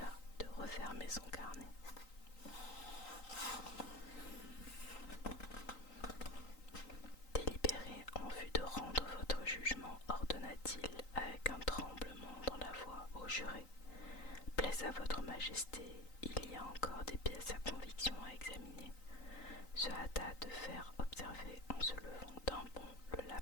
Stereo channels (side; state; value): right; late; 3.9 ms